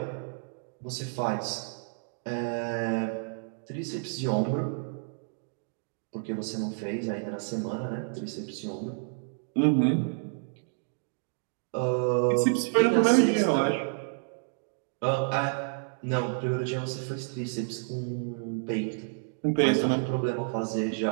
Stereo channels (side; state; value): left; silent; digital silence